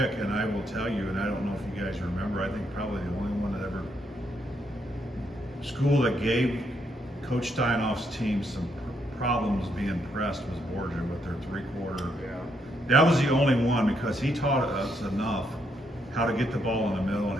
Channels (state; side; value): normal; both; correlation 0.76